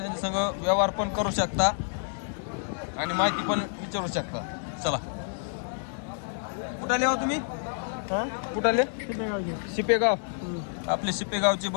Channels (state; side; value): silent; right; digital silence